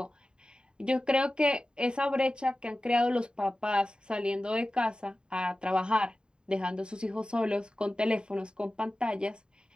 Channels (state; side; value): late; left; 0.049 ms